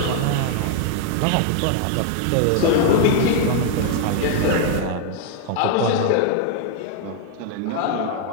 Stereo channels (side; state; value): both; different; correlation 0.00